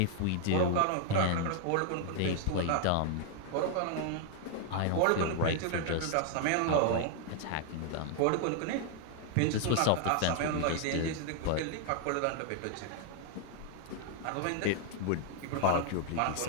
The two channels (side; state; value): both; different; correlation 0.00